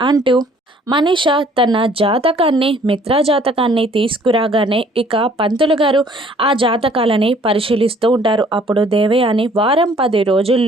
అంటూ మనీష తన జాతకాన్ని మిత్రా జాతకాన్ని తీసుకురాగానే ఇక పంతులు గారు ఆ జాతకాలని పరిశీలిస్తూ ఉంటారు. అప్పుడు దేవయాని వారం 10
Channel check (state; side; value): normal; both; correlation 0.58